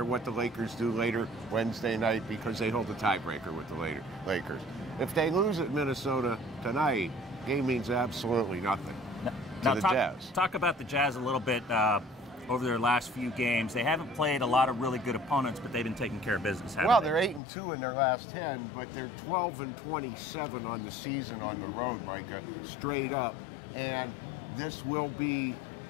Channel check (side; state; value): right; drops out; at 17.4 s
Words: what the Lakers do later Wednesday night because they hold the tiebreaker with the Lakers. If they lose at Minnesota tonight, game means absolutely nothing to the Jazz. Talk about the Jazz a little bit. Over their last few games, they haven't played a lot of really good opponents, but they've been taking care of business. Well, they're 8-2 in their last 10, but they're 12-27 on the season on the road, Micah, straight up. And this will be